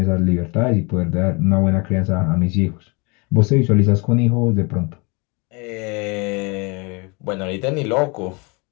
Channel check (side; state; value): right; quieter; 29.4 dB